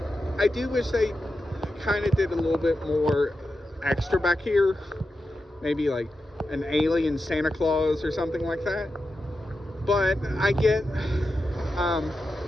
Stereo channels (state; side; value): normal; both; correlation 0.90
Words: I do wish they kind of did a little bit more extra back here, maybe like an alien Santa Claus or something like that. But I get